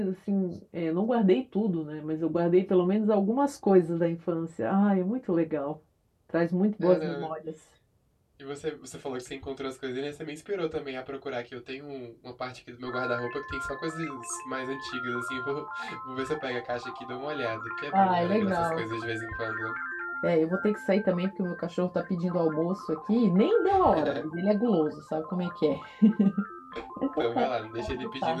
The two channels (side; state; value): both; identical; correlation 1.00